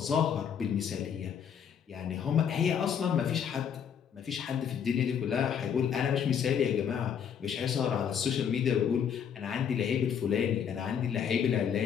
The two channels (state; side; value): quieter; right; 8.0 dB